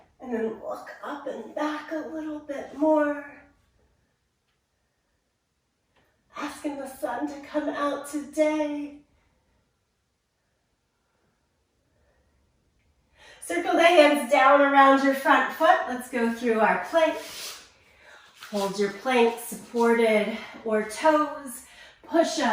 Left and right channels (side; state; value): both; identical; correlation 1.00